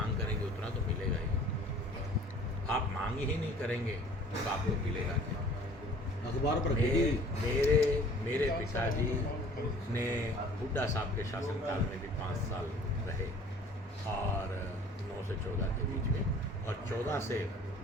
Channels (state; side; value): normal; both; correlation 0.50